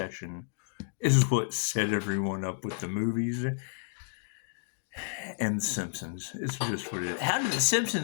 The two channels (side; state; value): right; silent; digital silence